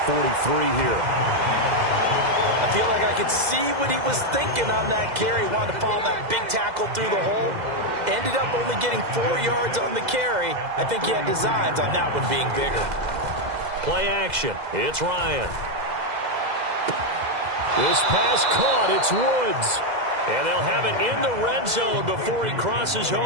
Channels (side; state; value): left; late; 2.0 ms